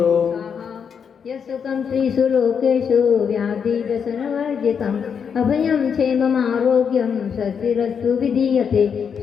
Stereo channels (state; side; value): quieter; right; 6.9 dB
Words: यस्सुखं त्रिषु लोकेषु व्याधिव्यसनवर्जितम् अभयं क्षेममारोग्यं स्वस्तिरस्तु विधीयते